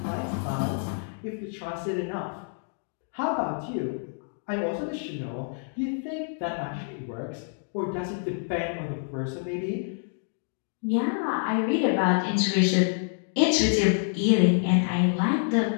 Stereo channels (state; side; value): silent; right; 60 dB below the other